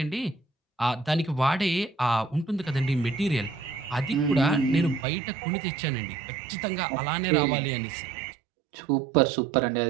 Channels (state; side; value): drops out; left; at 5.1 s